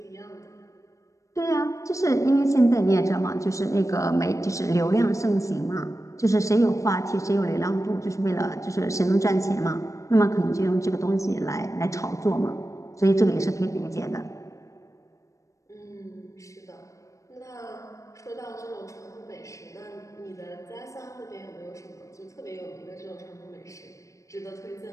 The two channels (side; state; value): right; late; 0.15 ms